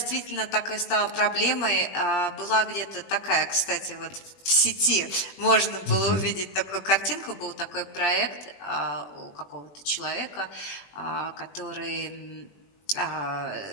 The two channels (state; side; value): late; right; 20 ms